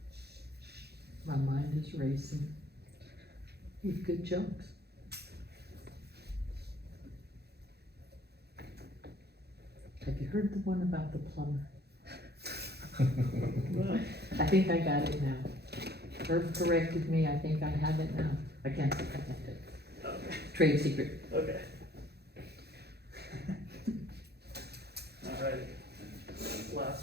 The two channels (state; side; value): late; left; 0.48 ms